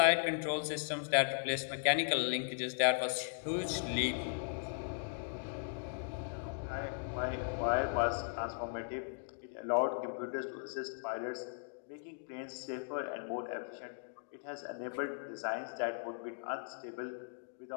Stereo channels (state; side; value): silent; right; digital silence